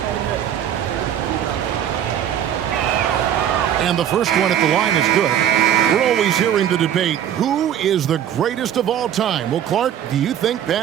And the first one at the line is good. We're always hearing the debate, who is the greatest of all time? Well, Clark, do you think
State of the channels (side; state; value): left; quieter; 9.9 dB